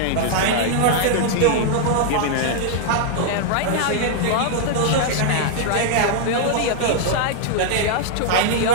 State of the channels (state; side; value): different; both; correlation 0.00